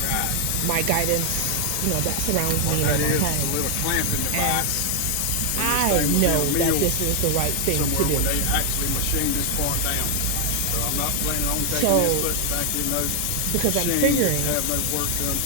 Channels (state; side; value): different; both; correlation 0.00